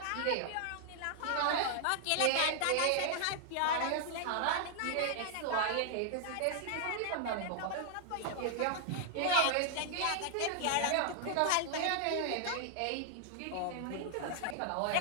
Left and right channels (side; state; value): both; different; correlation 0.00